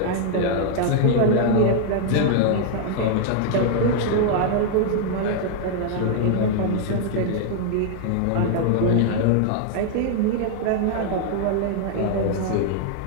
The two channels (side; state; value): both; different; correlation -0.01